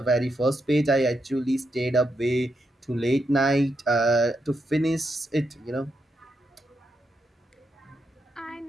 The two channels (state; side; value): normal; both; correlation 0.83